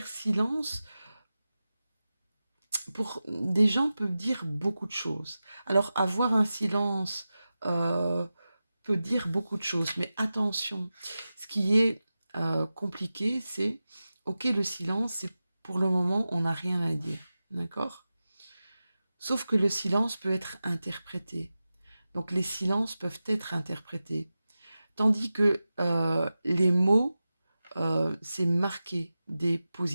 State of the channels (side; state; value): both; inverted; correlation -0.94